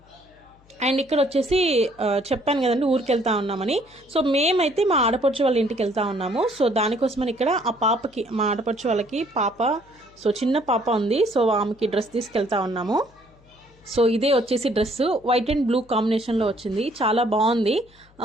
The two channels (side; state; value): left; noise; hum, 29 dB below the sound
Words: అండ్ ఇక్కడ వచ్చేసి చెప్పాను కదండి ఊరికి వెళ్తా ఉన్నామని. సో మేమైతే మా ఆడపడుచు వాళ్ళ ఇంటికి వెళ్తా ఉన్నాము. సో దానికోసమని ఇక్కడ ఆ పాపకి, మా ఆడపడుచు వాళ్ళకి పాప, సో చిన్న పాప ఉంది. సో ఆమెకి డ్రెస్ తీసుకెళ్తా ఉన్నాము. సో ఇదే వచ్చేసి డ్రెస్ వైట్ అండ్ బ్లూ కాంబినేషన్లో వచ్చింది, చాలా బాగుంది.